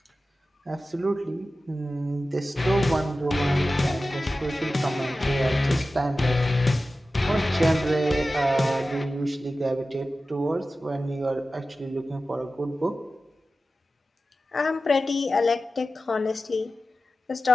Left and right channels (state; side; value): normal; both; correlation 0.94